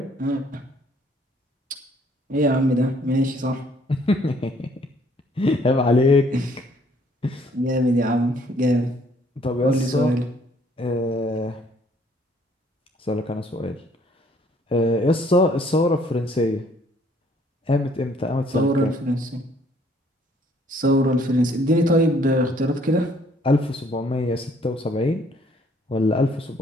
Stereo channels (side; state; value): both; normal; correlation 0.62